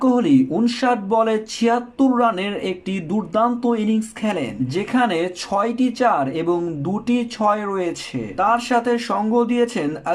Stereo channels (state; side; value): identical; both; correlation 1.00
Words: কোহলি 59 বলে 76 রানের একটি দুর্দান্ত ইনিংস খেলেন, যেখানে 6টি 4 এবং 2টি 6 রয়েছে। তার সাথে সঙ্গ দিয়েছেন